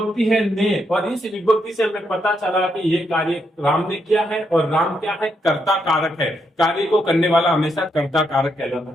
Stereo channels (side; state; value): both; normal; correlation 0.79